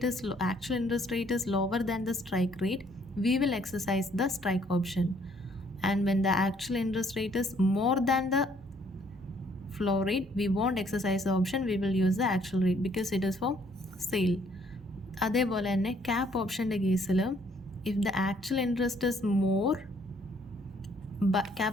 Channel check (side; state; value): both; normal; correlation 0.64